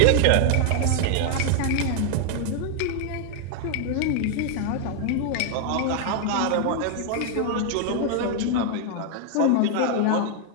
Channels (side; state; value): both; different; correlation 0.00